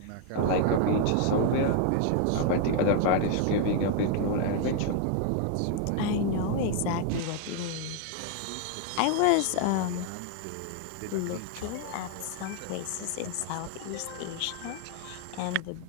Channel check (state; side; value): different; both; correlation 0.00